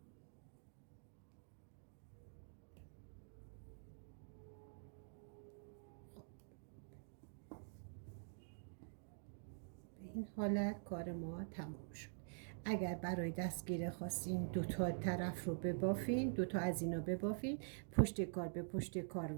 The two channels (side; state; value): left; silent; digital silence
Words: به این حالت کار ما تمام شد. اگر برای دستگیره خواستین دو تا طرف رو ببافین، دو تا از اینا ببافین، پشت کار به پشت کار